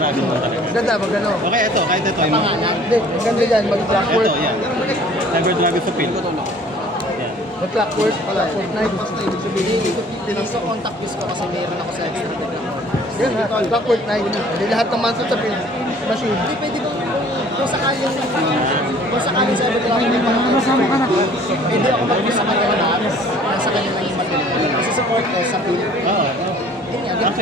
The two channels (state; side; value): normal; both; correlation 0.53